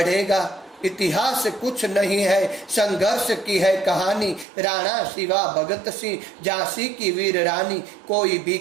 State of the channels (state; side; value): drops out; left; at 4.5 s